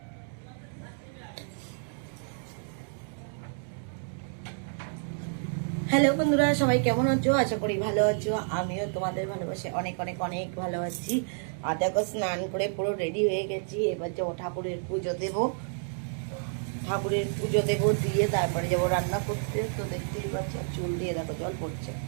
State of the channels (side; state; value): left; silent; 56 dB below the other